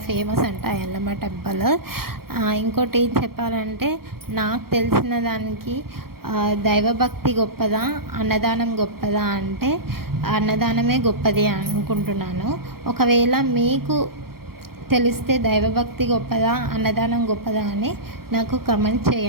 ఫేమస్ అంట ఎల్లమ్మ టెంపుల్. ఇంకోటి ఏం చెప్పాలంటే, నాకు తెలిసిన దానికి దైవభక్తి గొప్పదా అన్నదానం గొప్పదా అంటే అన్నదానమే గొప్పది అనుకుంటున్నాను. ఒకవేళ మీకు తెలిస్తే దైవభక్తి గొప్పదా అన్నదానం గొప్పదా అని నాకు కమెంట్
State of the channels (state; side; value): late; left; 0.94 ms